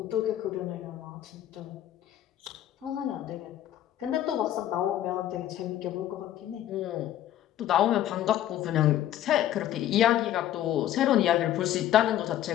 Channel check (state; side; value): quieter; right; 12.1 dB